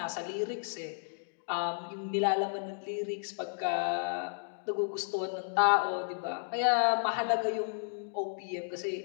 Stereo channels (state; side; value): silent; right; digital silence